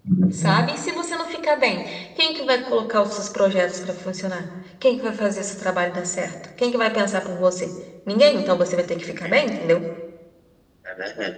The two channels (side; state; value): both; identical; correlation 1.00